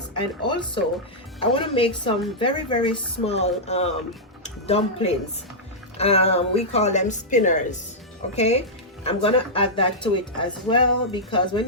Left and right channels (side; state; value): both; normal; correlation -0.09